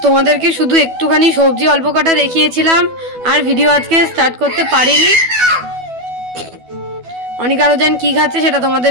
তোমাদেরকে শুধু একটুখানি সবজি অল্প কাটা দেখিয়েছিলাম, আর ভিডিও আজকে স্টার্ট করতে পারিনি। অনিকা রুজান কি খাচ্ছে সেটা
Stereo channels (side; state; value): left; late; 12 ms